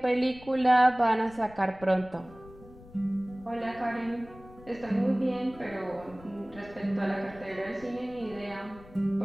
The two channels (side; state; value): left; noise; rumble, 21 dB below the sound